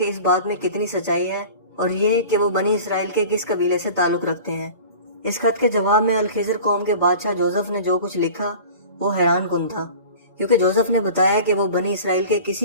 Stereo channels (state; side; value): inverted; both; correlation -0.40